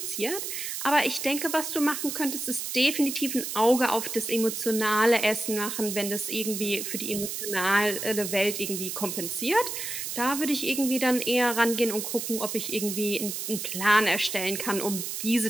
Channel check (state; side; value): noise; right; hiss, 5 dB below the sound